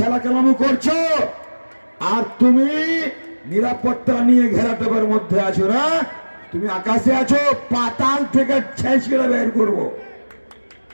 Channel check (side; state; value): both; inverted; correlation -1.00